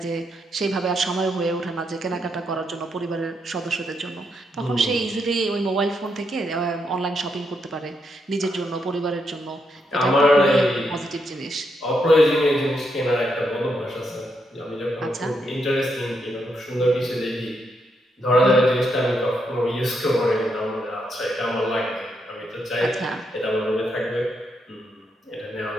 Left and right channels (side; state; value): both; normal; correlation 0.79